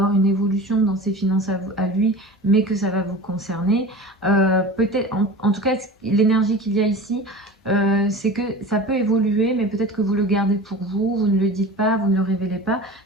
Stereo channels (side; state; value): both; normal; correlation 0.35